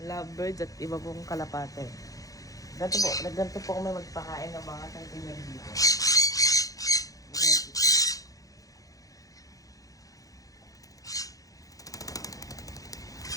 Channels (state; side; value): late; right; 0.17 ms